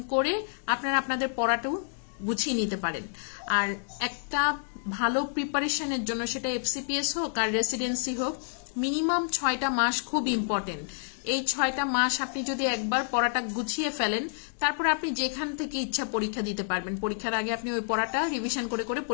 করে আপনারা আপনাদের পড়াটাও গুছিয়ে নিতে পারেন। আর একটা ভালো প্রিপারেশনের জন্য সেটা এফসিপিএস হোক আর রেসিডেন্সি হোক, মিনিমাম 6টা মাস খুব ইম্পর্টেন্ট। এই 6টা মাস আপনি যদি একবার পড়াটা গুছিয়ে ফেলেন, তারপর আপনি যেখান থেকে ইচ্ছা পরীক্ষা দিতে পারবেন। পরীক্ষার আগে আপনি ওই পড়াটা রিভিশন করে করে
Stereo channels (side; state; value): right; silent; 59 dB below the other